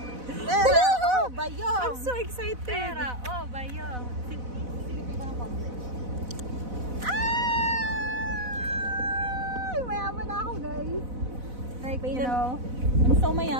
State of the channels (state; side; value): late; left; 4.0 ms